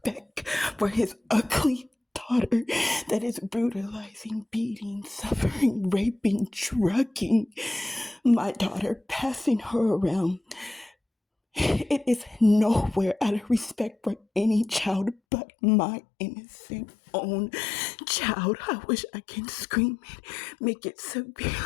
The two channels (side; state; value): right; drops out; at 15.2 s